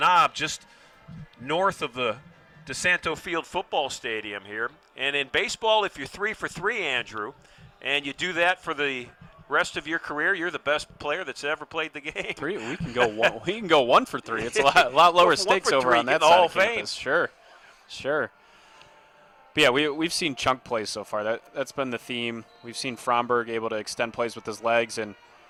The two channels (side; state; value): both; identical; correlation 1.00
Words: just north of the DiSanto Field football stadium here. And in baseball, if you're 3 for 3, Andrew, and you do that for the rest of your career, you're the best player that's ever played the game. 3, we can go 1. We can go 1 for 3. It's a lot lower stakes over on that side of campus. Sure. But yeah, we've seen chunk plays so far. That's been the theme. We've seen Fromberg able to extend plays with his legs, and